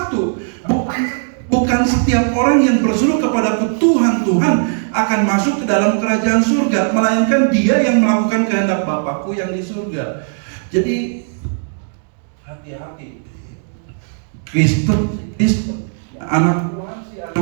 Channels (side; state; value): left; silent; 68 dB below the other